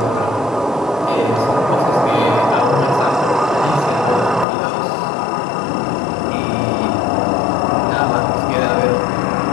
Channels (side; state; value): right; drops out; at 4.5 s